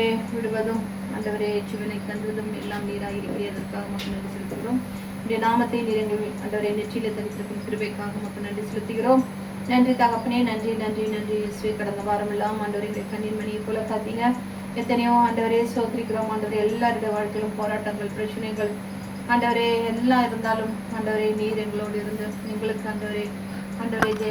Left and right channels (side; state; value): both; identical; correlation 1.00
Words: விடுவதும் ஆண்டவரே ஜீவனை தந்துவதும் எல்லாம் நீராக இருக்கிறதற்காக மக்கள் நன்றி செலுத்துகிறோம். இந்த நாமத்தை நிறைங்கள் ஆண்டவரே நெற்றியில தரித்திருக்கும் கிருபைக்காக மக்கள் நன்றி செலுத்துகிறோம். நன்றி தகப்பனே, நன்றி நன்றி நன்றி இயேசுவே. கடந்த வாரம் எல்லாம் ஆண்டவரை கண்ணீர் மணியை போல காத்தீங்க. எத்தனையோ ஆண்டவரே சோதரிக்கிறோம். ஆண்டவரே எல்லாருடைய வாழ்க்கையிலும் போராட்டங்கள் பிரச்சனைகள் ஆண்டவரே எல்லாம் இருந்தாலும் ஆண்டவரே நீர் எங்களோடு இருந்து எங்களுக்கு ஆண்டவரே